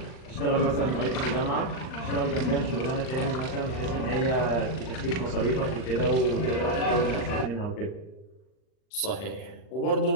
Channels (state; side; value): late; right; 39 ms